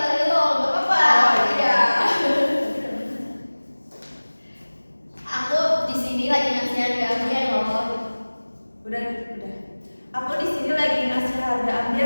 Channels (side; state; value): both; inverted; correlation -1.00